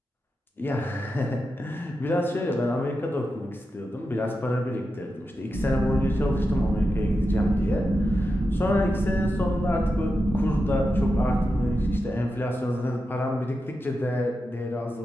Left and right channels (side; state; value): both; normal; correlation 0.89